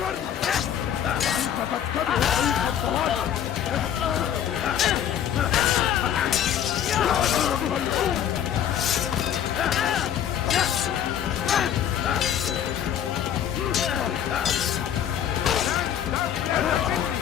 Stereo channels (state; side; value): quieter; right; 9.8 dB